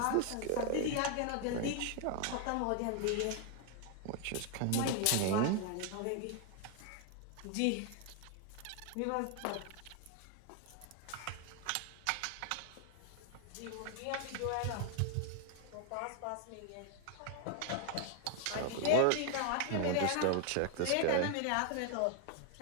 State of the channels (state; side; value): different; both; correlation 0.01